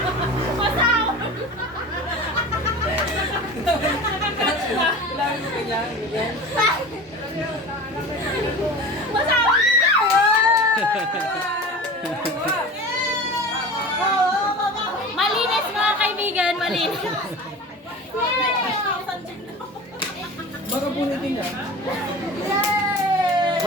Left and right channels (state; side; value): normal; both; correlation 0.35